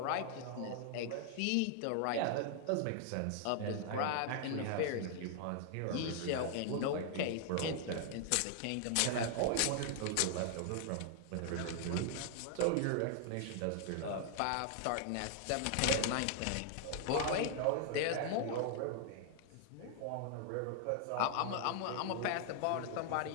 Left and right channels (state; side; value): different; both; correlation 0.00